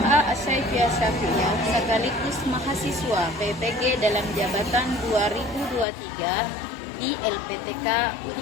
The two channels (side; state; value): right; drops out; at 5.9 s